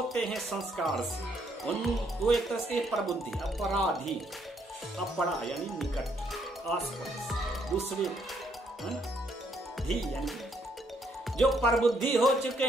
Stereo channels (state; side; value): normal; both; correlation 0.71